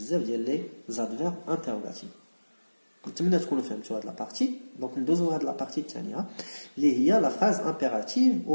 ديال لي زادفيرب انتروغاتيف نتمنى تكونوا فهمتوا هاد لا بارتي دونك ندوزو هاد لا بارتي الثانيه اللي هي لا فراز امبيراتيف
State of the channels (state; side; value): inverted; both; correlation -1.00